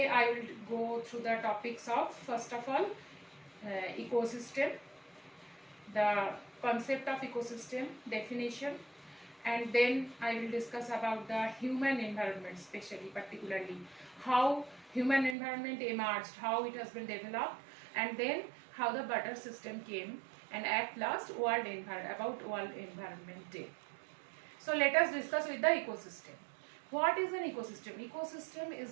I will go through the topics of first of all ecosystem, the concept of ecosystem, definition, and then I will discuss about the human environment, particularly how human environment emerged, how it has been developed, and then how the butter system came, and at last World Environment Day. So let us discuss with the ecosystem. What is an ecosystem? Ecosystem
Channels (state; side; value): drops out; left; at 15.4 s